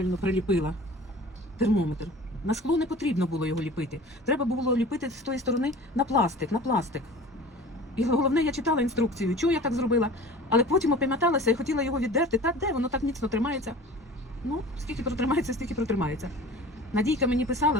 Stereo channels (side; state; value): both; normal; correlation 0.41